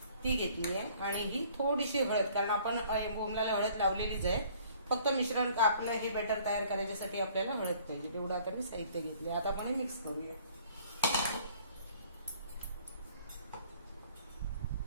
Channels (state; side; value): inverted; both; correlation -0.56